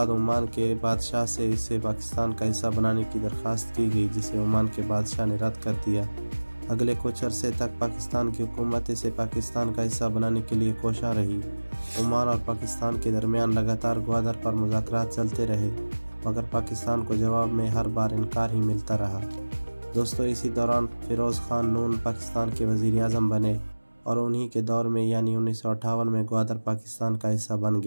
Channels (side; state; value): both; inverted; correlation -1.00